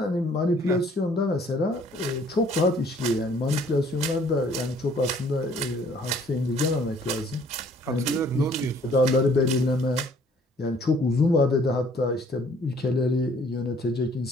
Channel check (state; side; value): normal; both; correlation 0.58